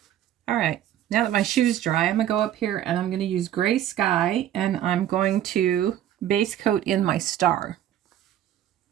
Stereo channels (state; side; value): quieter; left; 11.5 dB